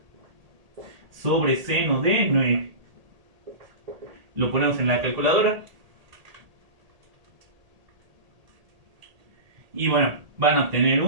sobre seno de 9. Lo ponemos en la calculadora. Y bueno, van a obtener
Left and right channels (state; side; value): late; left; 1.8 ms